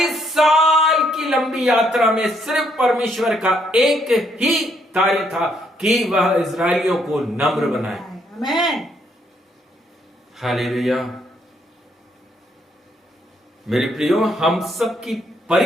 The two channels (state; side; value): normal; both; correlation 0.72